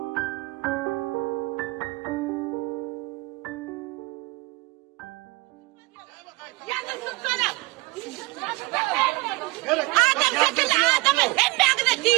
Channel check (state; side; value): quieter; left; 24.0 dB